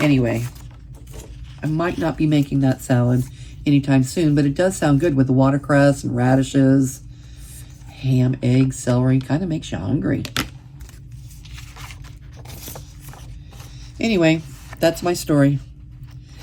Anyway, I might not be making that salad anytime soon, but it does sound good with the watercress and radishes, ham, eggs, celery. Kind of makes you hungry. Anyway, that's my story.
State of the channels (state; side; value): identical; both; correlation 1.00